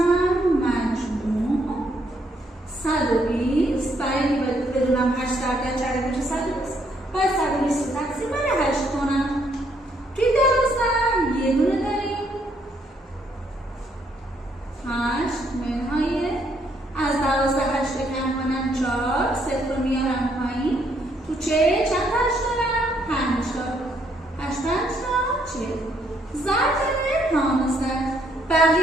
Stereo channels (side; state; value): both; normal; correlation 0.71